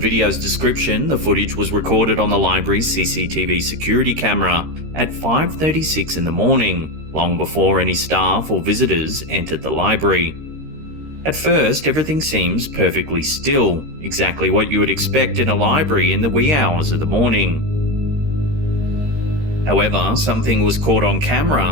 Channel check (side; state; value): left; late; 13 ms